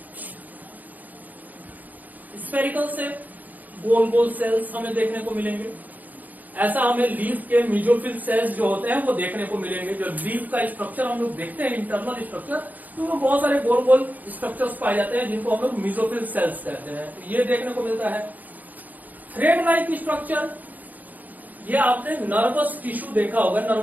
स्फेरिकल शेप, गोल गोल सेल्स हमें देखने को मिलेंगे। ऐसा हमें लीफ के मेसोफिल सेल्स जो होते हैं वो देखने को मिलेंगे। जो लीफ का स्ट्रक्चर हम लोग देखते हैं, इंटरनल स्ट्रक्चर, तो वो बहुत सारे गोल गोल स्ट्रक्चर्स पाए जाते हैं जिनको हम लोग मेसोफिल सेल्स कहते हैं। तो ये देखने को मिलता है। थ्रेड लाइक स्ट्रक्चर, ये आपने नर्वस टिश्यू देखा होगा,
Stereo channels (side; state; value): left; late; 0.081 ms